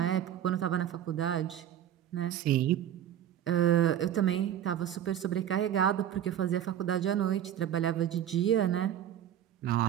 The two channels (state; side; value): quieter; left; 10.6 dB